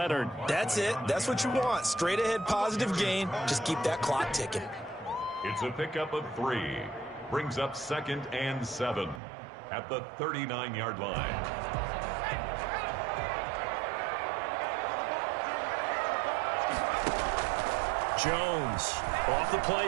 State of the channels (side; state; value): left; drops out; at 9.2 s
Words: That's it. That's what you want. Straight ahead, positive gain. Just keep that clock ticking. It's a pickup of 3. Brings up 2nd and 7 at the 39-yard line. Jones off the